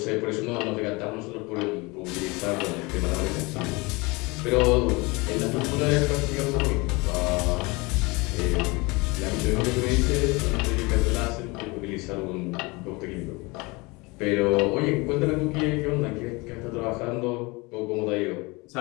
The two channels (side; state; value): right; quieter; 25.5 dB